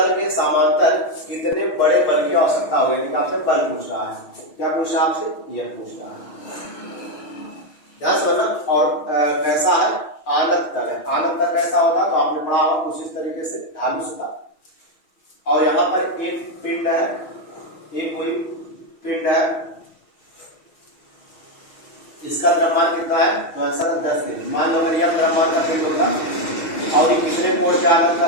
के समांतर कितने बड़े बल की आवश्यकता होगी? आपसे बल पूछ रहा है। क्या पूछ रहा है आपसे? यह पूछ रहा है। ध्यान से सुनना। और कैसा है? आनत तल है। आनत तल कैसा होता है? तो आपने पढ़ा होगा कुछ इस तरीके से, धानुष का। और यहाँ पर एक पिंड है, एक कोई पिंड है, इसका द्रव्यमान कितना है? तो आंसर है 10 kg। मान लो अगर यह द्रव्यमान का पिंड होगा और ये कितने कोण पे आनत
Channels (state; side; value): late; right; 6.2 ms